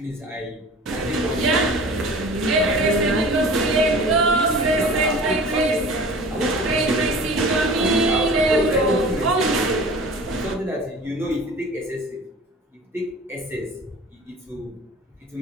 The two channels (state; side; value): normal; both; correlation 0.41